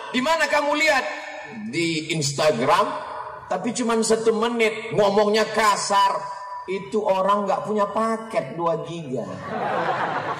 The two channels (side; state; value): both; identical; correlation 1.00